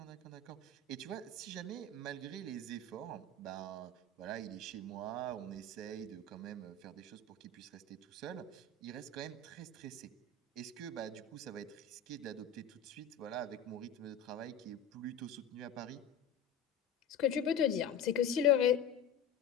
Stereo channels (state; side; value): quieter; right; 5.3 dB